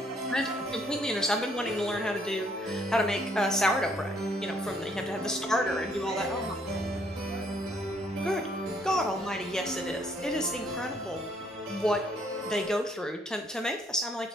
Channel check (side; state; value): both; normal; correlation 0.67